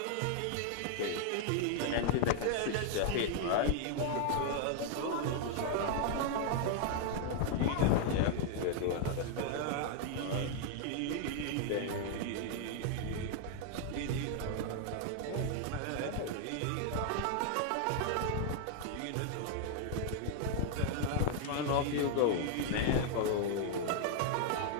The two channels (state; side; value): different; both; correlation 0.00